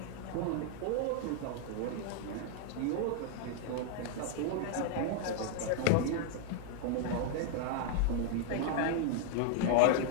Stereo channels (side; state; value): both; different; correlation 0.00